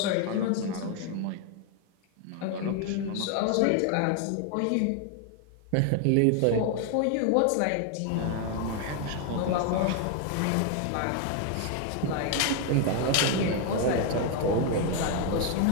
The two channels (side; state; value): both; different; correlation 0.01